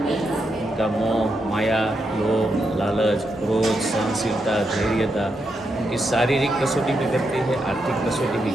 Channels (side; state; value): both; normal; correlation 0.83